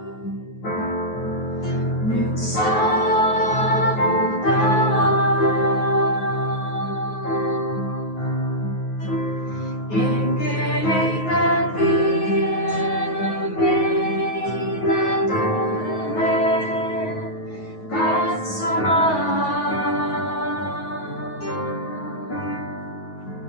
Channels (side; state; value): right; late; 9.4 ms